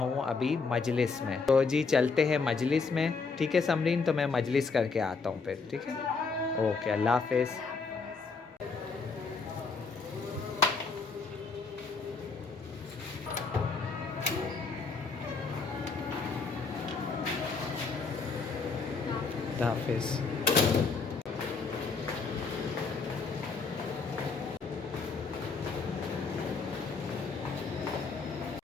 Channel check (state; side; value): quieter; right; 4.6 dB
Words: ابھی مجلس میں. تو جی چلتے ہیں مجلس میں. ٹھیک ہے سمرین، تو میں مجلس کر کے آتا ہوں پھر. ٹھیک ہے، اوکے، اللہ حافظ. اللہ حافظ.